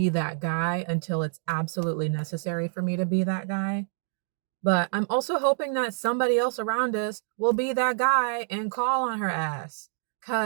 that guy until it's absolutely necessary for me to be that guy. But I'm also hoping that somebody else around us will be that guy and call on her ass.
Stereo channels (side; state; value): left; silent; digital silence